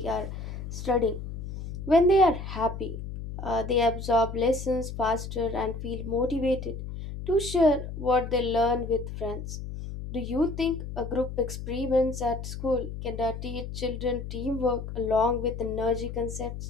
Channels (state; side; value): noise; left; hum, 8 dB below the sound